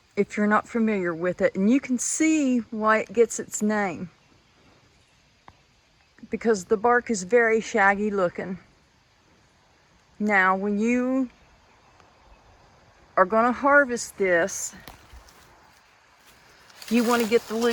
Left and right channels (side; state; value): both; identical; correlation 1.00